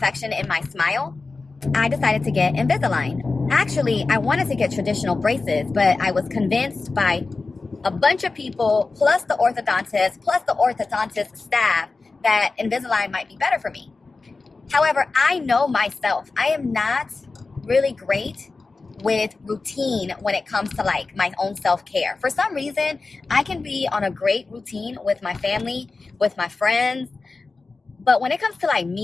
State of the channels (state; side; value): quieter; right; 3.9 dB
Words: in my smile, I decided to get Invisalign. Actually, I wanted to get traditional braces, but I was convinced by a bunch of people, plus the orthodontist staff, that Invisalign might be better for me. However, I know myself. I am not really great with routine when it comes to like my own self-care. For some reason, I can be on a great routine with my family, with my friends, but when it comes to like